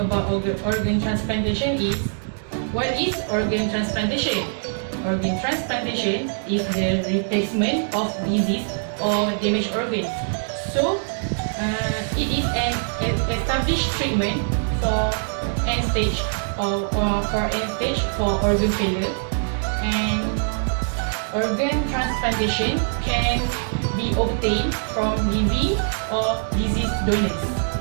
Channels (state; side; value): silent; left; digital silence